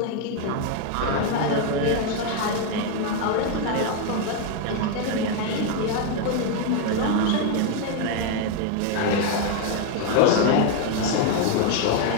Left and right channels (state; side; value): different; both; correlation 0.01